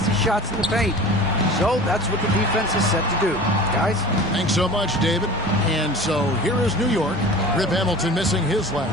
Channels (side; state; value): both; normal; correlation 0.39